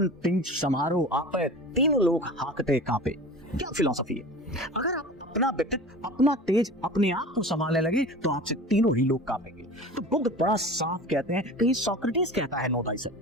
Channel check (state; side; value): normal; both; correlation 0.36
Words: तिंज समारोह आपे तीनों लोग हाकते कांपे। क्या फिलॉसफी है? अगर आप अपना व्यक्तित्व, अपना तेज, अपने आप को संभालने लगे तो आपसे तीनों ही लोग कांपेंगे। तो बुद्ध बड़ा साफ कहते हैं, कहीं सोक्रेटिस कहता है नो